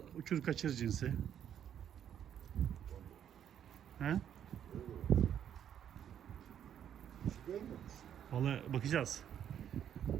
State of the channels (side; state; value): left; quieter; 9.5 dB